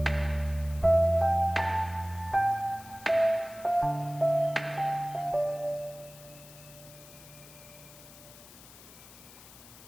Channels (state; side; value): noise; left; hiss, 20 dB below the sound